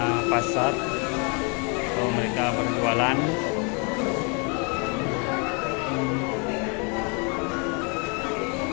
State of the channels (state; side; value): quieter; right; 34.7 dB